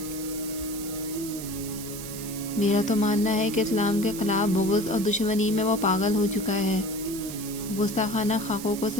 میرا تو ماننا ہے کہ اسلام کے خلاف بغض اور دشمنی میں وہ پاگل ہو چکا ہے۔ گستاخانہ خاکوں کو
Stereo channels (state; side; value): noise; right; hiss, 10 dB below the sound